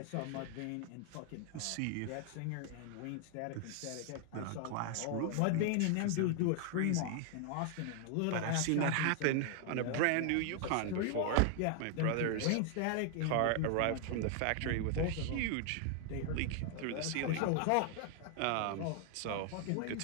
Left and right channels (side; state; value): both; different; correlation 0.00